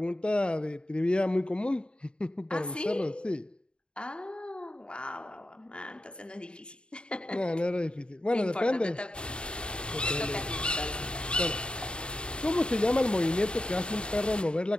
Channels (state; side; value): late; right; 0.052 ms